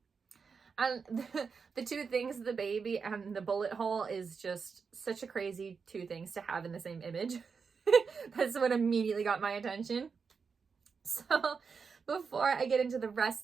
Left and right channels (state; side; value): quieter; left; 5.5 dB